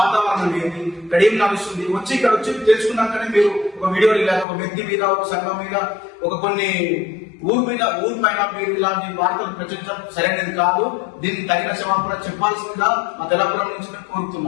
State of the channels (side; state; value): right; drops out; at 4.5 s